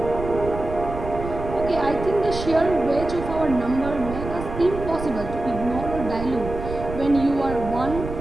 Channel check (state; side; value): noise; right; rumble, 8 dB below the sound